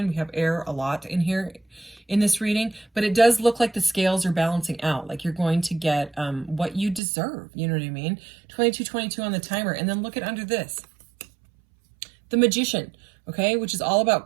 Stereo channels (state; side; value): drops out; left; at 7.0 s